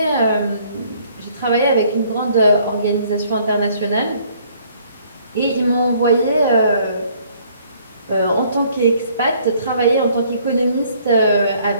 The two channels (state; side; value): inverted; both; correlation -0.61